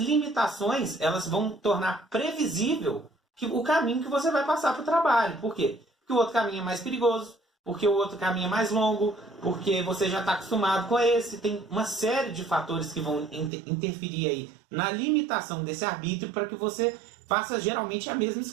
elas vão tornar previsível o caminho que você vai passar para o trabalho. Por quê? Porque o outro caminho é mais perigoso, porque o outro caminho é mais longo, porque você já está acostumado com esse. Tem uma série de fatores que vão interferir aí na limitação desse arbítrio para que você faça geralmente a mesma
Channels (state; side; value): drops out; left; at 13.5 s